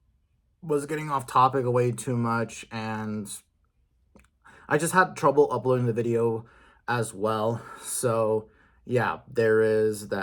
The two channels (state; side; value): identical; both; correlation 1.00